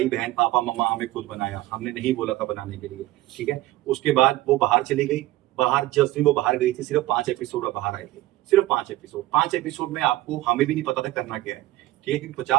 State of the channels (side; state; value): left; quieter; 16.9 dB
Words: बहन पापा मम्मा हमें खुद बनाया, हमने नहीं बोला था बनाने के लिए, ठीक है। उसके बाद वो बाहर चली गई, बाहर जिस दिन वो बाहर गई थी सिर्फ 5 एपिसोड बाहर आए थे, सिर्फ 5 एपिसोड में आपको हमें भी नहीं पता था करना क्या है, ठीक है, क्योंकि